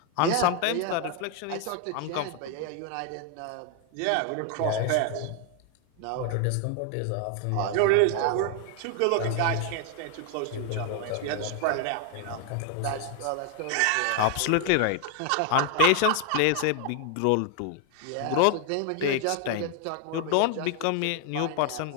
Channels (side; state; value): both; different; correlation 0.00